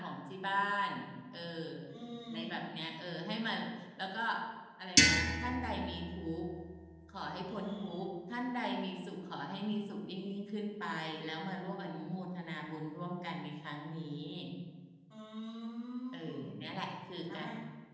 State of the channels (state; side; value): identical; both; correlation 1.00